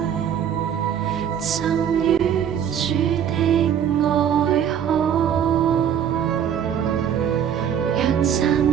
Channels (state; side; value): quieter; left; 8.9 dB